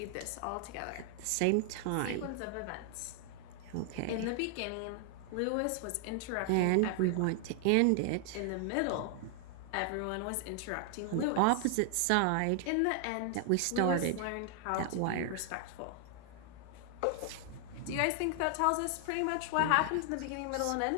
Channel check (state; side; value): different; both; correlation 0.00